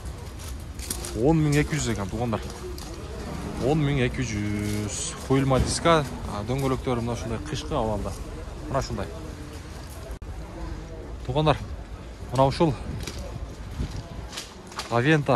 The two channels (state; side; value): identical; both; correlation 1.00